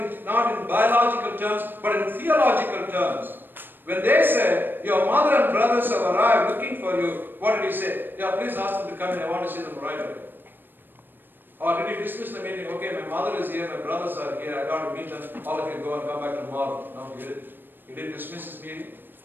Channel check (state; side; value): late; left; 0.095 ms